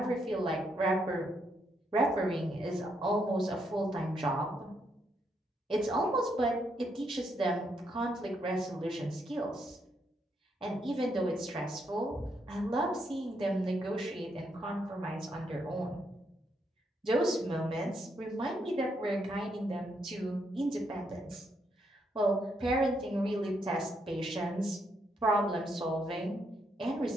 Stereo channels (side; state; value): both; normal; correlation 0.77